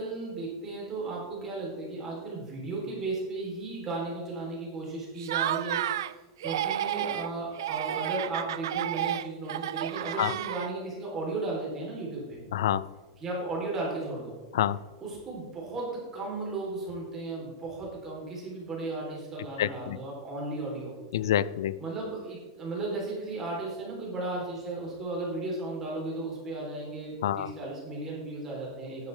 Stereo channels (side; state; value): both; normal; correlation -0.11